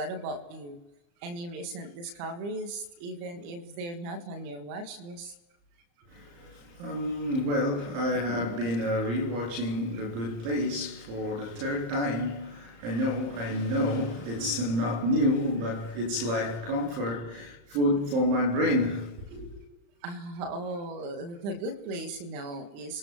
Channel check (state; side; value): late; left; 35 ms